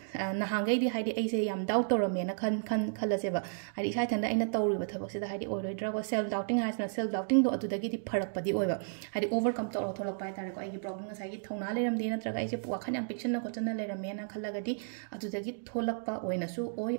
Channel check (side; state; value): left; silent; digital silence